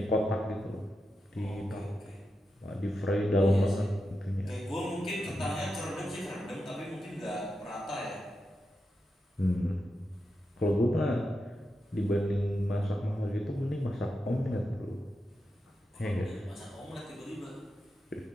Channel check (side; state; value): both; normal; correlation 0.88